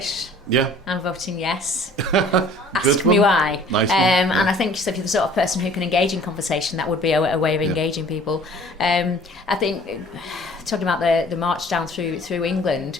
Yeah. I'm voting yes. Ask me why. Nice and I think so if you're the sort of person who can engage in conversation, that would be a way of engaging people. I think, talking about the march down through England,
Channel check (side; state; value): both; normal; correlation 0.51